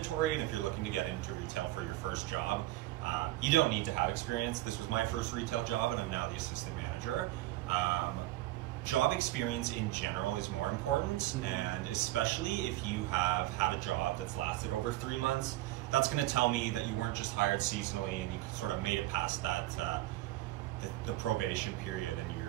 and if you're looking to get into retail for your first job, you don't need to have experience. This was my first retail job, and I'm now the assistant manager. Job experience in general is more important, and especially if you have had a job that's lasted over 3 months, that's going to tell me that you weren't just hired seasonally and you sort of made it past that the probation period, and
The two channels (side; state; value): left; quieter; 16.8 dB